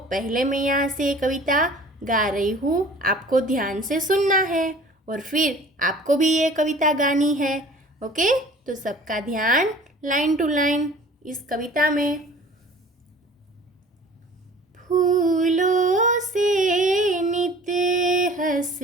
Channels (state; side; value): normal; both; correlation 0.47